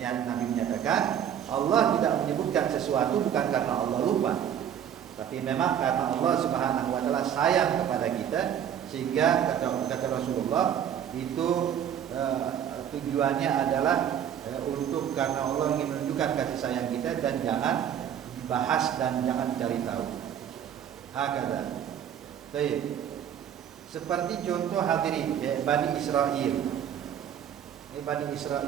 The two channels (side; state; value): left; quieter; 9.3 dB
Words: Nabi menyatakan Allah tidak menyebutkan sesuatu bukan karena Allah lupa, tapi memang karena Allah Subhanahu wa taala sayang kepada kita, sehingga kata Rasulullah itu tujuannya adalah untuk karena Allah ingin menunjukkan kasih sayang kita dan jangan dibahas dan jangan dicari tahu. Hakada. Baik. Seperti contoh hadirin Bani Israel. Ini Bani